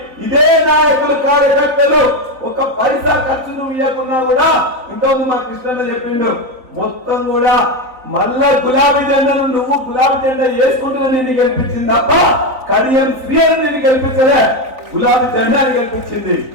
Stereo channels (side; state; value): left; late; 3.9 ms